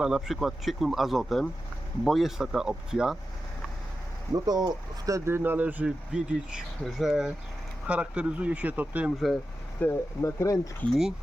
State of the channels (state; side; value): normal; both; correlation 0.91